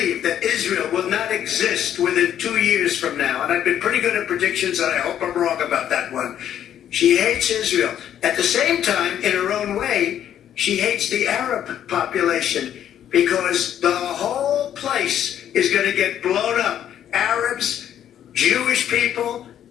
that Israel will not exist within 2 years from now. And I've been pretty good at predictions, and I hope I'm wrong about that one. She hates Israel. At the same time, in her own way, she hates the Arab population because the whole place is going to get blown up. Arabs, Jewish people,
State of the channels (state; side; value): quieter; right; 10.3 dB